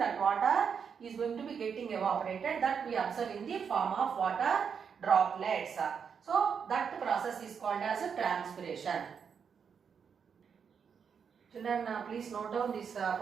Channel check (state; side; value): quieter; left; 6.7 dB